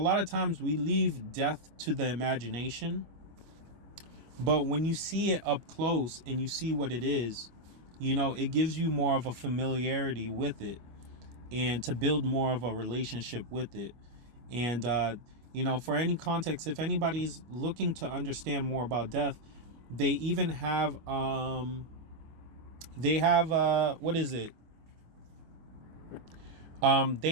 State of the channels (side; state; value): left; late; 25 ms